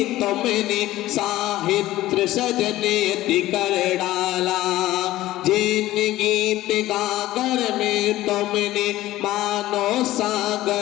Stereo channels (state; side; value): quieter; right; 15.8 dB